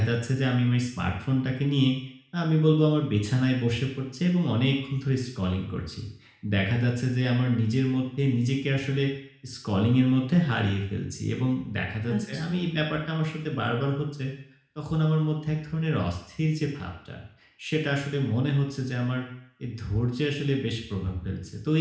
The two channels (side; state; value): both; identical; correlation 1.00